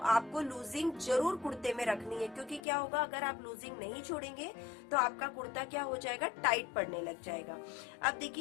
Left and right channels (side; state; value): right; drops out; at 2.6 s